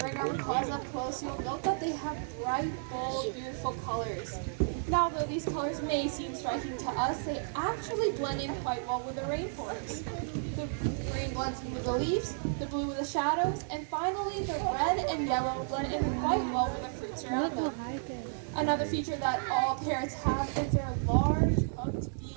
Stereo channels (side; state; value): left; silent; 56 dB below the other